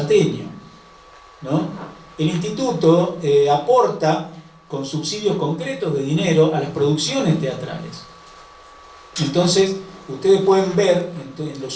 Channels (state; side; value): identical; both; correlation 1.00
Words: ¿no? El instituto aporta con subsidios concretos de dinero a las producciones teatrales. Entonces, ustedes pueden ver en